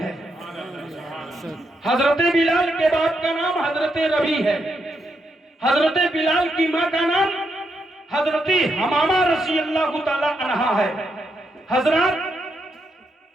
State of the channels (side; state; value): both; normal; correlation 0.81